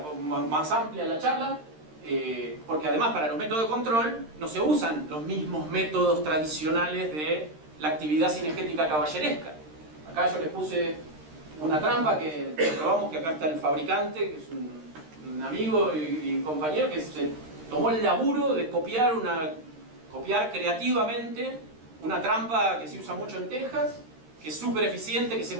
más amplia la charla, porque además para los métodos de control no se usan los mismos métodos tradicionales de la actividad cinegética caballeresca. Acá yo les puse una trampa que probamos, que acá está el fabricante, que es un amigo y compañero que se tomó el laburo de copiar creativamente una trampa que se usa mucho en Texas, que es súper eficiente, que se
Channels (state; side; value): late; left; 13 ms